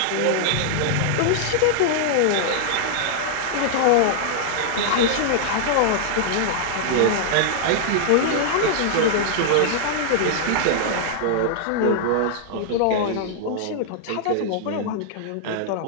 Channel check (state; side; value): different; both; correlation -0.01